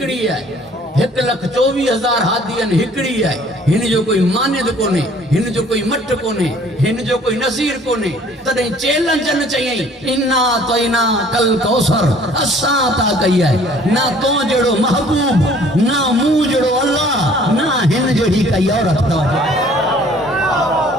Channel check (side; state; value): both; normal; correlation 0.55